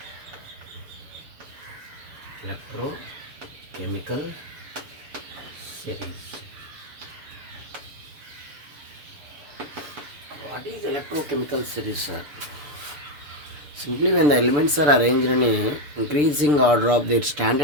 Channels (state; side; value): late; left; 6.8 ms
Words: Electrochemical series. What is electrochemical series, sir? Simply when the elements are arranged in a increasing order of their